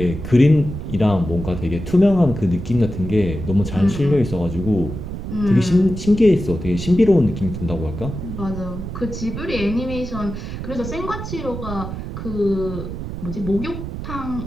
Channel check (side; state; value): right; noise; rumble, 7 dB below the sound